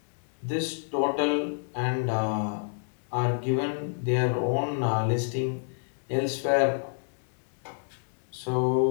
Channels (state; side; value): silent; right; digital silence